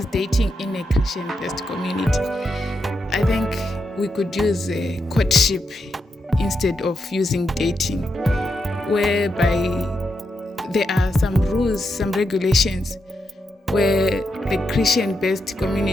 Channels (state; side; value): normal; both; correlation 0.84